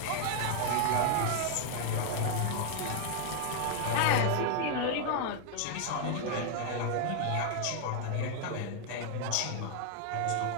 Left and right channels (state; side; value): different; both; correlation 0.00